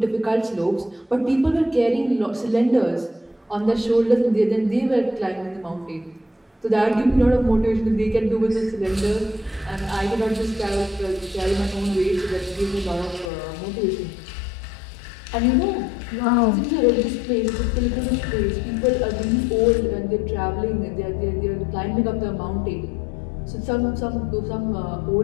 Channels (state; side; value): drops out; right; at 13.3 s